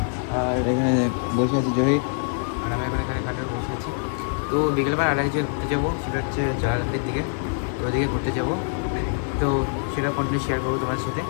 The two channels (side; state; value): right; silent; 59 dB below the other